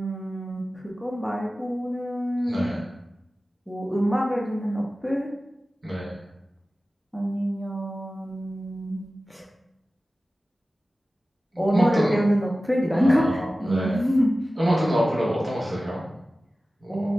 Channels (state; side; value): normal; both; correlation 0.96